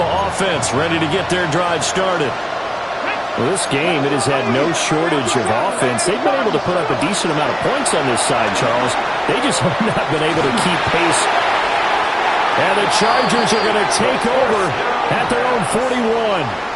offense ready to get their drive started. Well, this game, it has had no shortage of offense. They've been able to put up a decent amount of points on this side, Charles. They just have not been able to keep pace. And the Chargers are going to take over at their own 41.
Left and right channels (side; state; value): both; identical; correlation 1.00